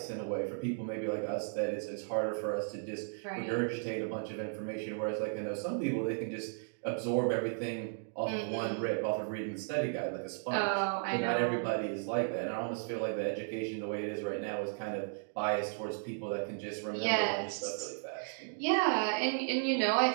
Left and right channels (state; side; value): silent; left; digital silence